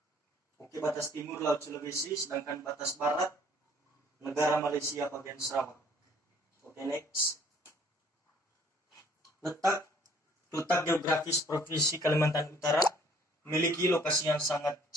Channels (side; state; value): both; normal; correlation 0.58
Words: Oke, batas timur Laut Sulawesi, sedangkan batas barat negara Malaysia bagian Sarawak. Oke, next. Letak geografis Provinsi Kalimantan Utara memiliki lokasi yang sangat